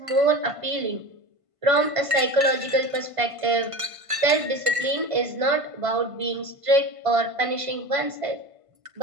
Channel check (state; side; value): late; left; 1.5 ms